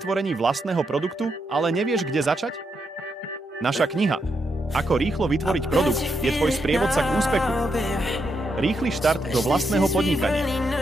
vlastného produktu, ale nevieš, kde začať? Naša kniha Ako rýchlo vytvoriť produkt je tvoj sprievodca k úspechu. Rýchly štart do vlastného podnikania.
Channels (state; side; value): normal; both; correlation 0.81